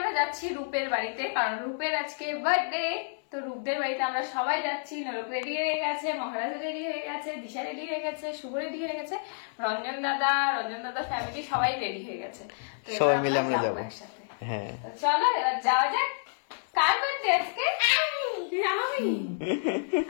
যাচ্ছি রূপের বাড়িতে, কারণ রূপের আজকে বার্থডে। তো রূপদের বাড়িতে আমরা সবাই যাচ্ছি। নরক রেডি হয়ে গেছে, মহারাজ রেডি হয়ে গেছে, দিশা রেডি হয়ে গেছে, শুভ রেডি হয়ে গেছে, রঞ্জন দাদা ফ্যামিলি সবাই রেডি হয়ে গেছে। সবাই মিলে আমরা যাবো একসাথে। হ্যাঁ, চলো এবার যাওয়া যাক। কার বার্থডে আজকে?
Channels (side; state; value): right; silent; 58 dB below the other